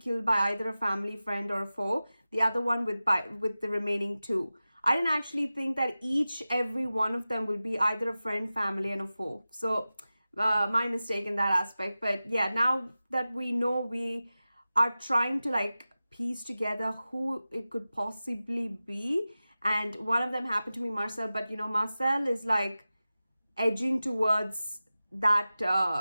by either a family, friend or a foe, the other one with the remaining two. I didn't actually think that every one of them will be either a friend, family and a foe. So my mistake in that aspect. But yeah, now that we know, we are trying to like piece together who it could possibly be. And one of them happened to be Marcel, but you know, Marcel is like edging towards that,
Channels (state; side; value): inverted; both; correlation -0.95